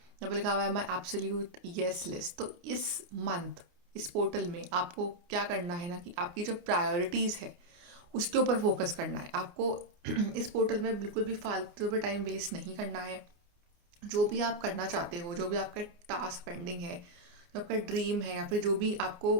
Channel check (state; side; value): late; left; 29 ms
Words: पे लिखा हुआ है माई एब्सोल्यूट यस लिस्ट। तो इस मंथ इस पोर्टल में आपको क्या करना है ना कि आपकी जो प्रायोरिटीज़ है उसके ऊपर फोकस करना है आपको। इस पोर्टल में बिल्कुल भी फालतू पे टाइम वेस्ट नहीं करना है। जो भी आप करना चाहते हो, जो भी आपका टास्क पेंडिंग है, जो आपका ड्रीम है या फिर जो भी आपको